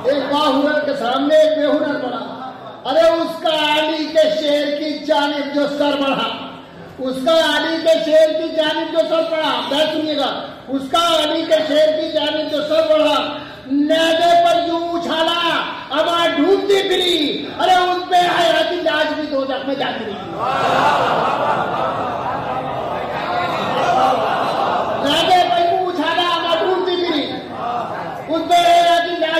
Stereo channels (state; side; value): identical; both; correlation 1.00